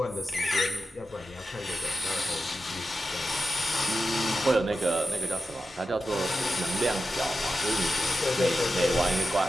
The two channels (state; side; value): normal; both; correlation 0.91